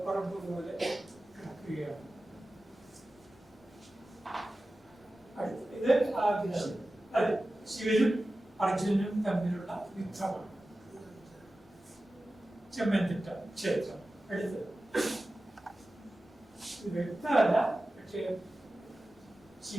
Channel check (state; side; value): normal; both; correlation 0.95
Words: പോലെ കിടക്കുകയാണ്. ഇത് അത് ശിവനും അർജുനനും തമ്മിലുള്ള യുദ്ധമാണ്. ചെമ്മന്തിട്ട ക്ഷേത്രം. അടുത്തത് വ്യക്തമല്ല, പക്ഷേ